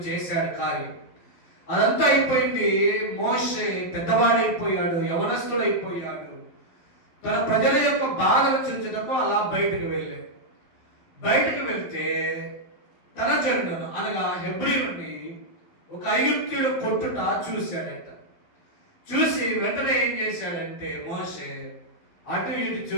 చేశాడు కార్యం. అదంతా అయిపోయింది. మోషే పెద్దవాడైపోయాడు, యవనస్తుడైపోయాడు. తన ప్రజల యొక్క బాధను చూచుటకు అలా బయటకు వెళ్ళాడు. బయటకు వెళ్తే తన జనులను అనగా హెబ్రీయుని ఒక ఐగుప్తీయుడు కొట్టుట చూశాడట. చూసి వెంటనే ఏం చేశాడంటే మోషే అటు ఇటు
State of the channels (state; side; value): late; right; 12 ms